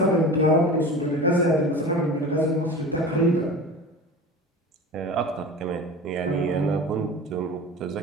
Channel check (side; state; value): both; normal; correlation 0.33